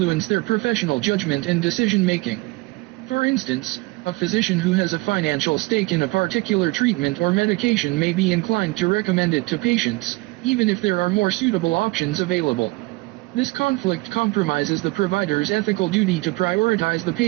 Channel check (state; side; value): quieter; left; 23.2 dB